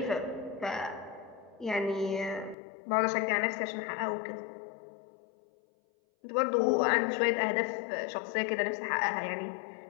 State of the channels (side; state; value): right; drops out; at 2.6 s